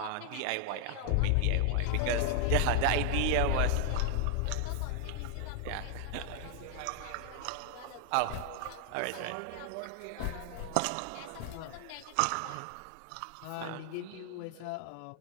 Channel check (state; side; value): different; both; correlation 0.00